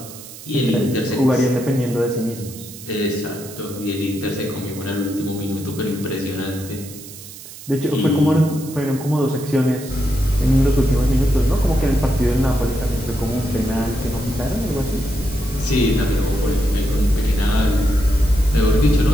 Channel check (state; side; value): noise; right; hiss, 15 dB below the sound